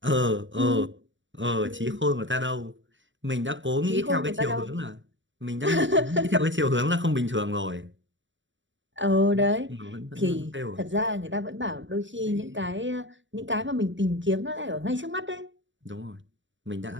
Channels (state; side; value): late; left; 0.55 ms